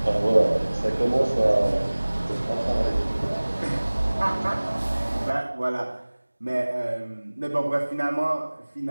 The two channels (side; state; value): both; inverted; correlation -1.00